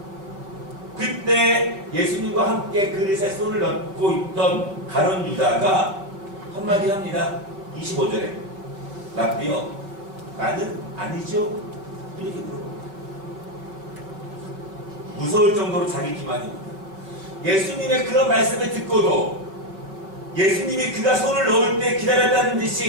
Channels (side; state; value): left; late; 5.1 ms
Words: 그때 예수님과 함께 그릇에 손을 얹고 있던 가룟 유다가 한마디 합니다. 25절에 라비여 나는 아니죠? 이렇게 물어봅니다. 무서울 정도로 자기 기만입니다. 예수님의 그런 말씀을 듣고도 예수님이 그가 손을 넣을 때 기다렸다는